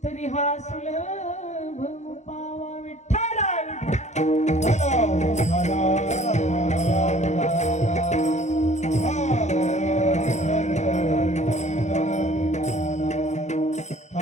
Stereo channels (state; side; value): late; right; 0.33 ms